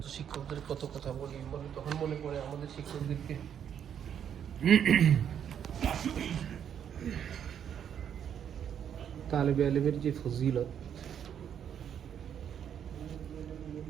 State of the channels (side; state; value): left; quieter; 8.8 dB